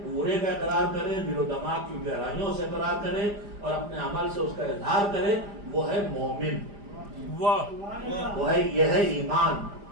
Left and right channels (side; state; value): left; late; 5.0 ms